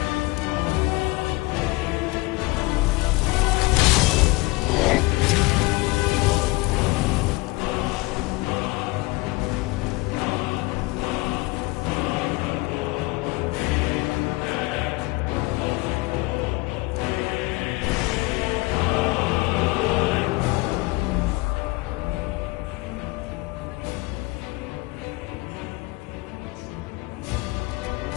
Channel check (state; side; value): quieter; right; 22.9 dB